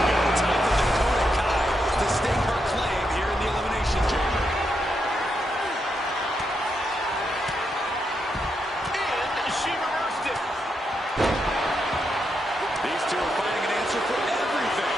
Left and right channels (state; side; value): normal; both; correlation 0.82